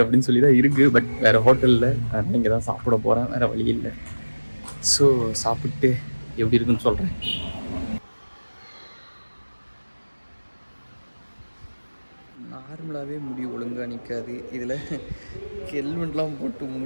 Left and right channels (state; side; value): inverted; both; correlation -1.00